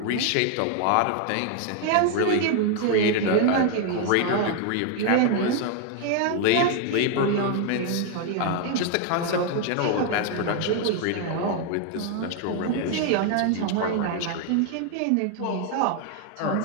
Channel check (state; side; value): different; both; correlation 0.01